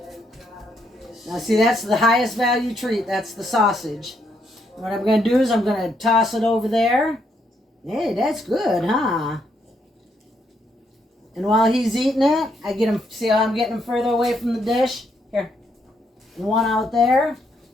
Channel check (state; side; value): normal; both; correlation 0.75